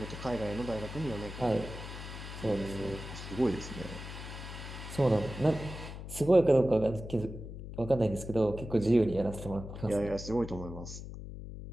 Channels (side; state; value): left; noise; hum, 10 dB below the sound